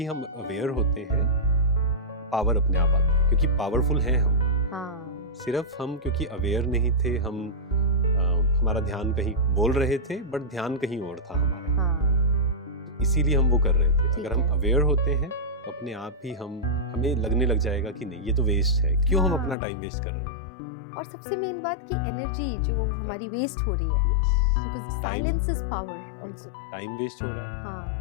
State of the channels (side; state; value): right; drops out; at 19.6 s